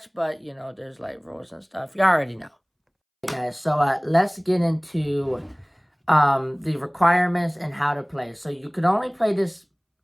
but, there's, like, rules and stuff. You already know. Okay, guys, so, let's get into, the requirements and how to play. So, you can only play this,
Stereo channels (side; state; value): both; identical; correlation 1.00